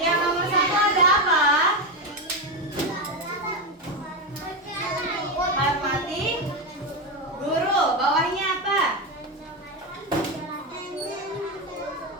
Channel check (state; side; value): normal; both; correlation 0.12